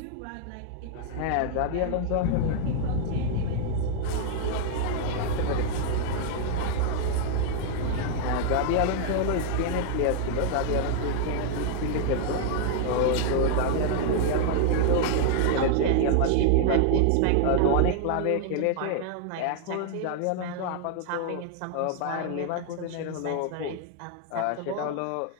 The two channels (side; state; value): both; different; correlation 0.00